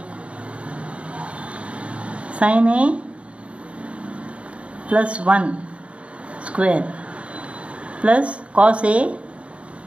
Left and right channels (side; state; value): left; late; 0.062 ms